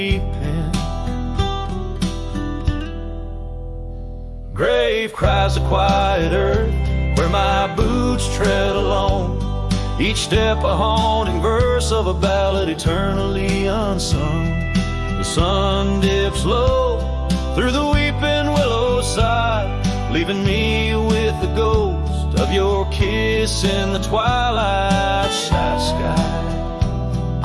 pen. Grave cries the quiet earth, where my boots tread alone. Each step a haunting verse of a ballad eternally unsung. The sun dips low through the weeping willow side, leaving me with the ghost of your kiss in the twilight sky.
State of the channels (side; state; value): both; identical; correlation 1.00